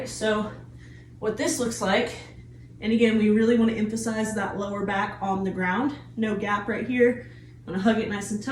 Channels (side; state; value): both; identical; correlation 1.00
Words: So what this looks like, and again, we really wanna emphasize that lower back on the ground, no gap right here. I'm gonna hug it nice and